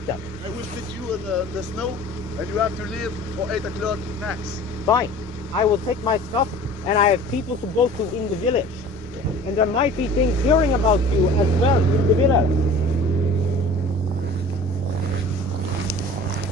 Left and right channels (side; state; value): both; normal; correlation 0.43